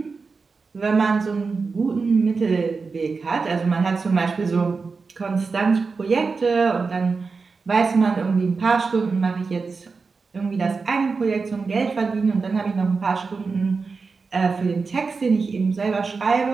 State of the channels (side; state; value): left; quieter; 4.6 dB